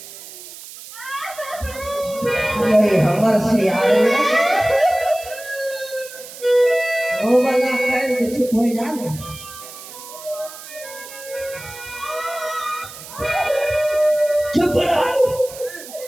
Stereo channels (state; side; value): noise; right; hiss, 15 dB below the sound